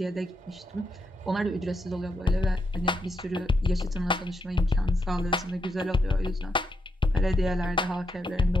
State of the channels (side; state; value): both; normal; correlation 0.82